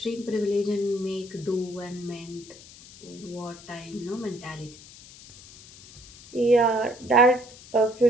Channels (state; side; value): noise; left; hiss, 20 dB below the sound